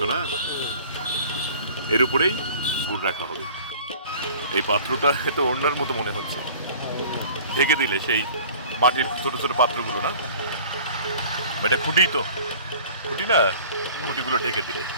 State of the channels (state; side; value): inverted; both; correlation -0.47